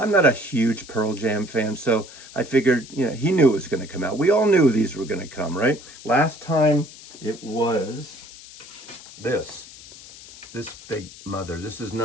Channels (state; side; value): noise; left; hiss, 18 dB below the sound